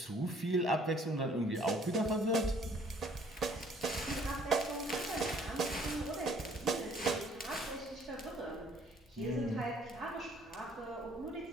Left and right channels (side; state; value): both; normal; correlation 0.60